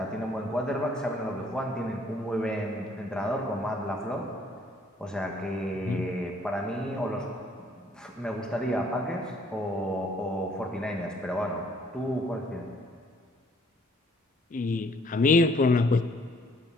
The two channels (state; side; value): normal; both; correlation 0.62